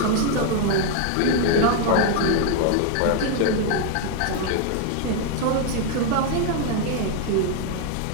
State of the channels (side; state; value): both; different; correlation 0.00